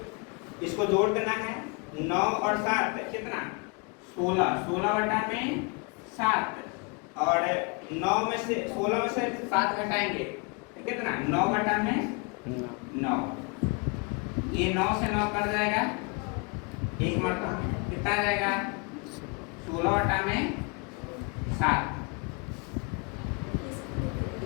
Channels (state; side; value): quieter; right; 32.4 dB